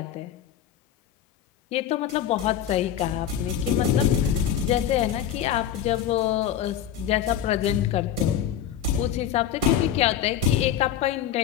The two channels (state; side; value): quieter; right; 9.9 dB